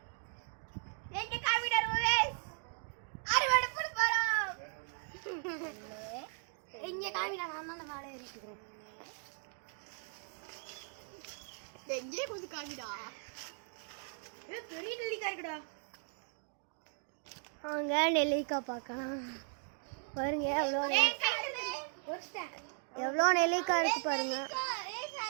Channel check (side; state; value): left; silent; 53 dB below the other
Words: எங்க காமிடர் வியூவர்ஸ், அறுவடை பண்ண போறோம். இங்க காமிடா, நான் தான் மேலே ஏறிக்கிறேன். எங்கே கொஞ்சம் காமிடா. பெரிய நெல்லிக்காய் இருக்குடா. வாங்க நெல்லிக்காய் பார்க்கலாம். பாருங்க எவ்வளோ நெல்லிக்காய் இருக்கு பாருங்க.